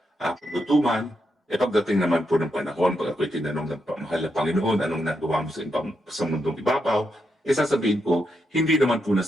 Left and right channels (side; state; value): both; normal; correlation 0.83